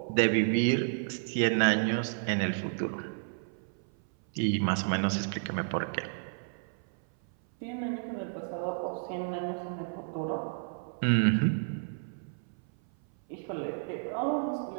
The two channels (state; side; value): silent; left; 57 dB below the other